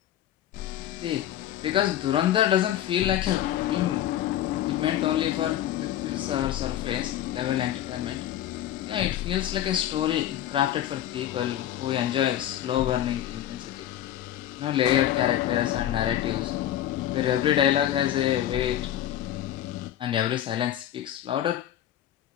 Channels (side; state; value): right; quieter; 11.8 dB